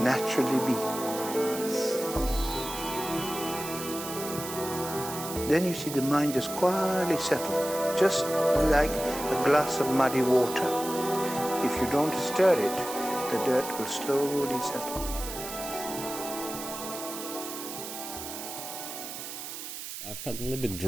be. Then you see the mind just quietly settle, just like a glass of muddy water. If you don't stir it, the dirt will slowly settle. I felt a little bit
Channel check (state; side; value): noise; right; hiss, 8 dB below the sound